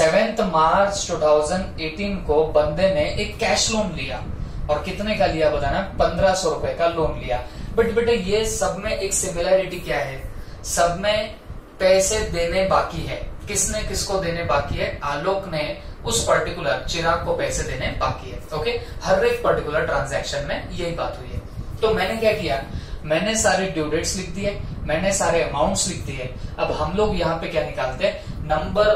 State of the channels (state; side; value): identical; both; correlation 1.00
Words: मार्च 2018 को बंदे ने एक कैश लोन लिया, और कितने का लिया बताना, 1500 रुपए का लोन लिया। बट बेटा ये सब में एक सिमिलैरिटी क्या है, सब में पैसे देने बाकी है। किसने किसको देने बाकी है, आलोक ने उस पर्टिकुलर चिराग को पैसे देने बाकी है, ओके। हर एक पर्टिकुलर ट्रांजैक्शन में यही बात हुई है। तो मैंने क्या किया, मैंने सारे ड्यू डेट्स लिख दिए, मैंने सारे अमाउंट्स लिख दिए। अब हम लोग यहाँ पे क्या निकालते हैं, number